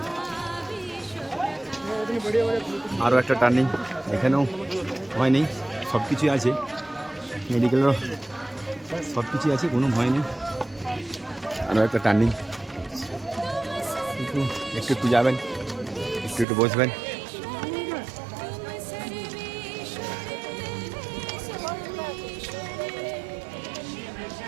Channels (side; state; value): left; drops out; at 16.4 s